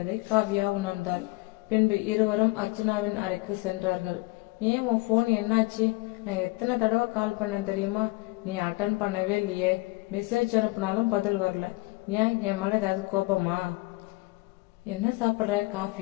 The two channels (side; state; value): right; quieter; 23.3 dB